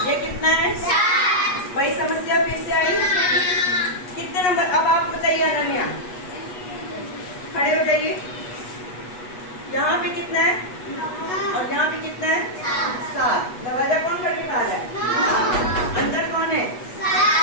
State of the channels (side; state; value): right; late; 8.2 ms